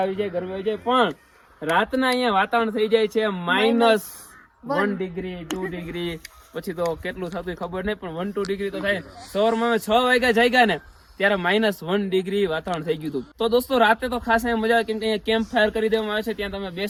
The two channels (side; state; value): both; identical; correlation 1.00